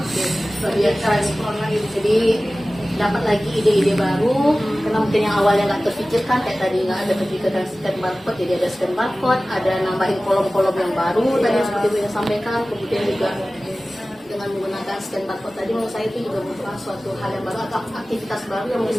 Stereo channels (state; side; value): normal; both; correlation 0.97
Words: Lebih eksplor lagi. Jadi dapat lagi ide-ide baru, karena mungkin yang awalnya nggak terpikirkan kayak tadi nggak ada terpikirkan scan barcode, jadi ada scan barcode, ada nambahin kolom-kolom yang baru tadi seperti Bu yang sampaikan. Kemudian juga dengan menggunakan scan barcode tadi menurut saya itu juga merupakan suatu hal yang baru atau aktivitas baru yang